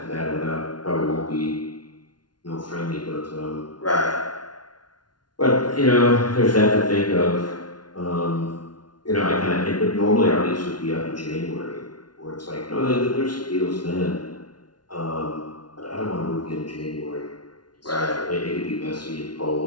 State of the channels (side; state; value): right; late; 0.70 ms